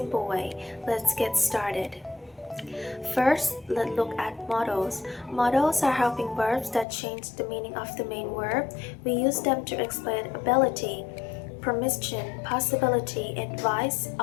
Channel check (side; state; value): right; drops out; at 6.9 s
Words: way. Let's get started. First, let's look at modals. Modals are helping verbs that change the meaning of the main verb. We use them to explain ability, permission, possibility, advice,